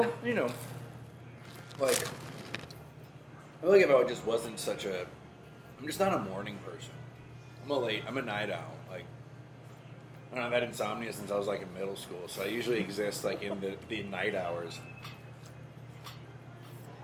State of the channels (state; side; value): identical; both; correlation 1.00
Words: you know, like, I feel like if I just wasn't I'm just not a morning person. I'm a night owl. Like, I don't know, I've had insomnia since I was like in middle school, so I usually exist like in the night hours.